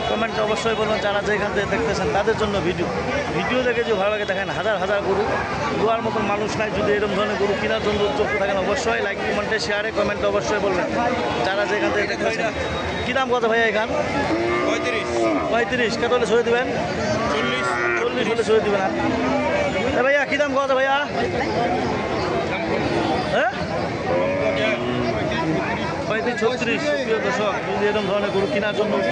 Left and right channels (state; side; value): identical; both; correlation 1.00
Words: কমেন্টে অবশ্যই বলবেন। যারা যেখান থেকে দেখতেছেন তাদের জন্য ভিডিও দেখে যদি ভালো লাগে দেখেন। হাজার গরু দুয়ার মতন মানুষ নাই। যদি এরকম ধরনের গরু কেনার জন্য উদ্যোগ থাকেন অবশ্যই লাইক কমেন্টে শেয়ারে কমেন্টে অবশ্যই বলবেন। যারা যেখান থেকে দেখতেছেন। কী দাম কত ভাইয়া এখান? 35। কত হলে ছেড়ে দেবেন? 40 হলে ছেড়ে দেবেন। ভাইয়া কী দাম কত ভাইয়া? হ্যাঁ 35-36। সুপ্রিয় দর্শক, যদি এরকম ধরনের গরু কেনার জন্য